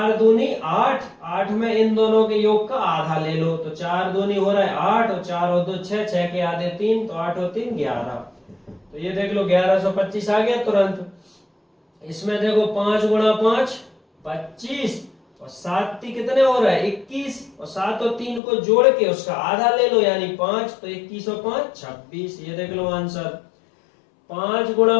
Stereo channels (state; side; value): drops out; right; at 18.4 s